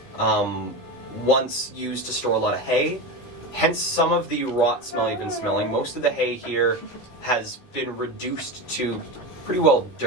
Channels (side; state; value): right; late; 16 ms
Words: once used to store a lot of hay. Hence some of the rot smell you've been smelling. Most of the hay here has been reduced to pretty well